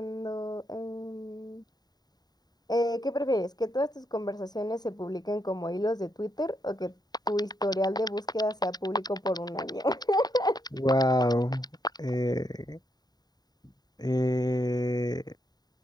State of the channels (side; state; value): right; late; 0.20 ms